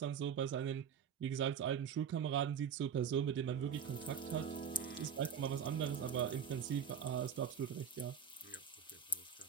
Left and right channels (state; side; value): quieter; left; 7.5 dB